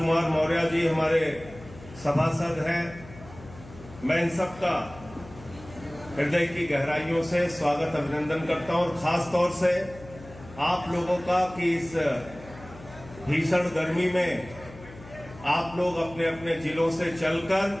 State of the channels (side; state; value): left; noise; hum, 18 dB below the sound